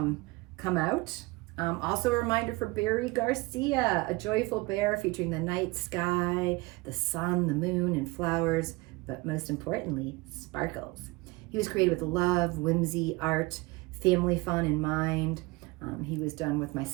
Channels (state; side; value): quieter; left; 23.5 dB